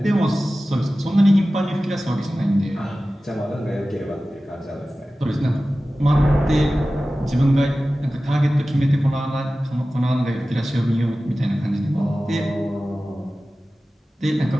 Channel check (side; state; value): both; normal; correlation 0.96